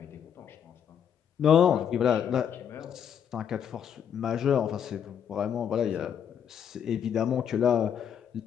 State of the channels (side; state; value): right; quieter; 8.4 dB